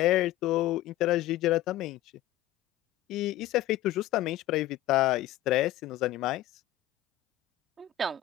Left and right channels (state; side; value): quieter; right; 13.6 dB